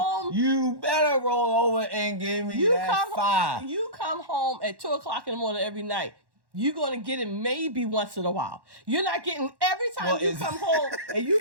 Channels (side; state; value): left; late; 1.1 ms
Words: you better roll over and give me that 5. You come home at 2:00 in the morning every night. You're going to get it maybe once in a while. You're not getting every time you come home and you